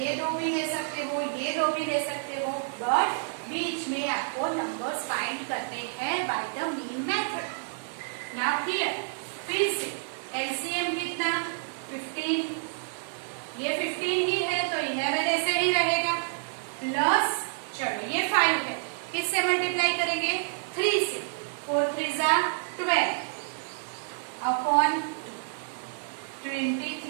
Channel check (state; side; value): silent; left; 57 dB below the other